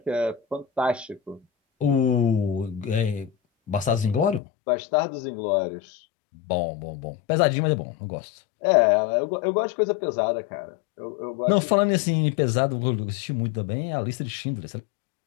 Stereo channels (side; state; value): right; drops out; at 4.4 s